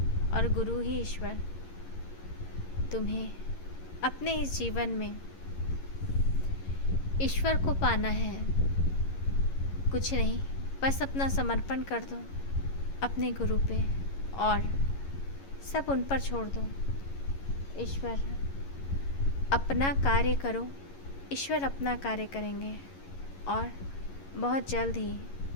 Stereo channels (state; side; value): late; right; 11 ms